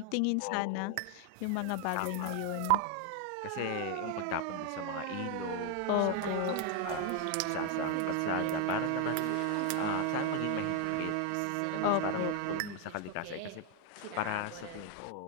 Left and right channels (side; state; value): both; different; correlation 0.01